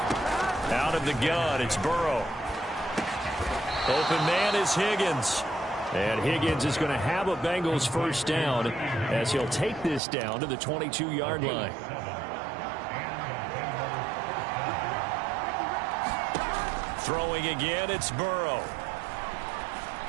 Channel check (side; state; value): left; drops out; at 10.0 s